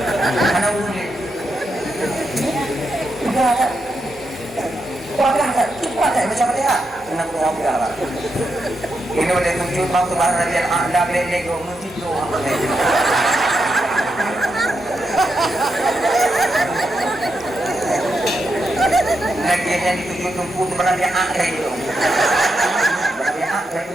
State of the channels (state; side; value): normal; both; correlation 0.84